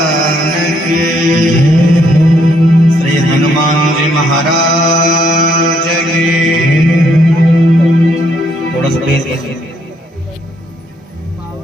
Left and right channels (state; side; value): normal; both; correlation 0.71